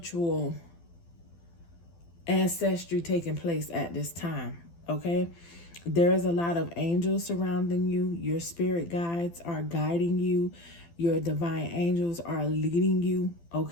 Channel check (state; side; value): late; right; 12 ms